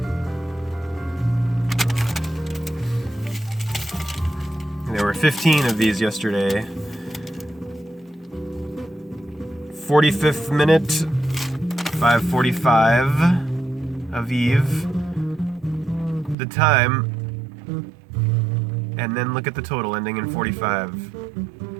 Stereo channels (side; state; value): left; drops out; at 16.4 s